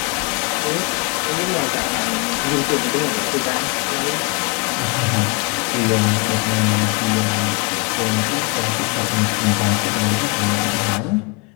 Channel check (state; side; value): quieter; right; 28.9 dB